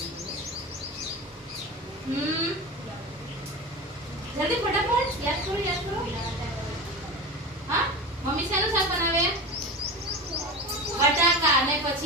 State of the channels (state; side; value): normal; both; correlation 0.27